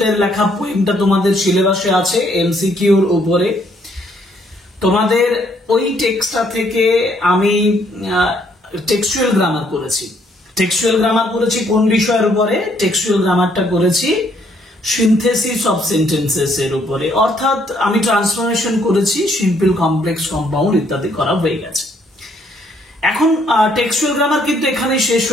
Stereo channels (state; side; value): normal; both; correlation 0.68